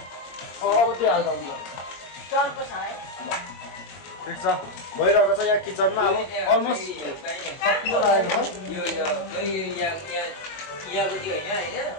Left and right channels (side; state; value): right; late; 22 ms